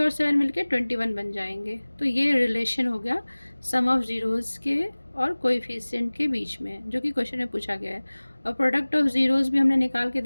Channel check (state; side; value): inverted; both; correlation -1.00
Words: 7 मिलके 21 बन जाएंगे। तो ये रिलेशन हो गया सम ऑफ ज़ीरोज़ के और कोएफिशिएंट के बीच में, जो कि क्वेश्चन में पूछा गया है। और प्रोडक्ट ऑफ ज़ीरोज़ भी हमने निकाल के